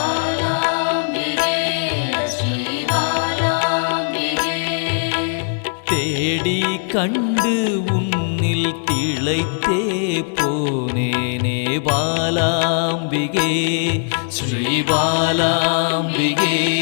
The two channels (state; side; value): silent; right; 66 dB below the other